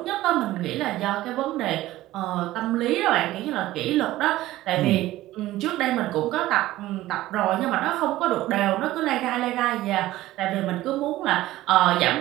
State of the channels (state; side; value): quieter; left; 16.0 dB